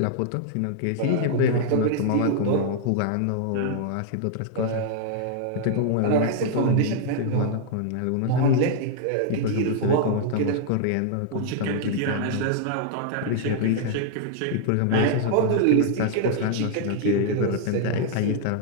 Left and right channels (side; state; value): both; different; correlation 0.00